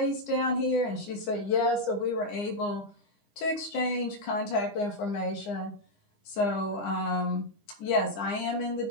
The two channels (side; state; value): right; late; 9.9 ms